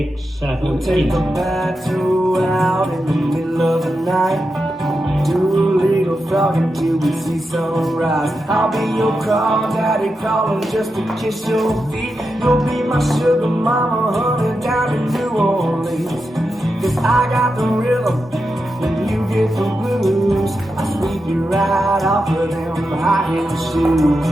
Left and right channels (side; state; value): both; normal; correlation 0.88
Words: 7, We'll 8. take the battle out in the middle of the night. Do a little frog until we see sunrise. I'll be your crawdaddy crawling just to kiss your feet. You'll be my sugar mama, honey, down in New Orleans. 'Cause I got the rhythm and you get the blues. I sweep you right off of them high-heel shoes.